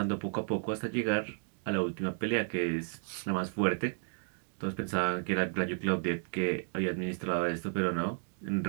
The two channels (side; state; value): left; silent; 56 dB below the other